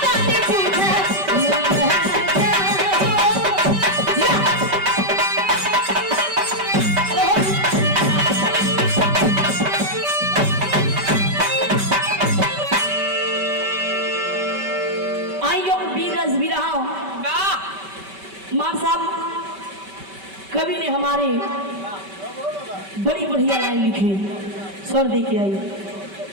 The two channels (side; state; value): left; late; 5.2 ms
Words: मार साहब कवि ने हमारे बड़ी बढ़िया लाइन लिखी, स्वर दे के आई।